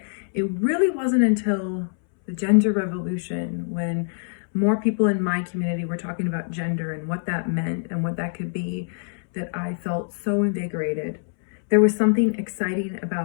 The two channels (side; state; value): right; silent; 62 dB below the other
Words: it really wasn't until the gender revolution when more people in my community were talking about gender and what that meant and what that could be that I felt so invigorated. There was something exciting